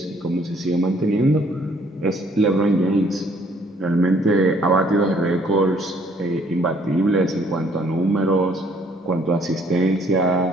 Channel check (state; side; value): normal; both; correlation 0.63